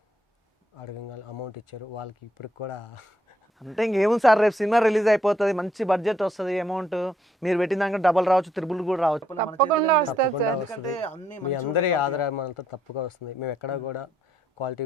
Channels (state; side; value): normal; both; correlation 0.72